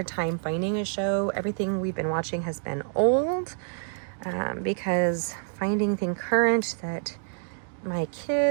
time finding a show. Everything we've been watching has been old, because finding thing current that my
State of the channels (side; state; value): left; silent; digital silence